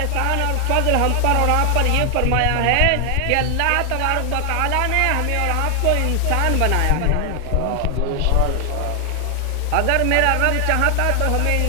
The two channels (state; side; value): different; both; correlation 0.00